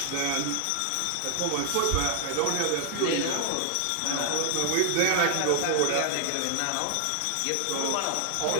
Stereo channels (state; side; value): different; both; correlation 0.00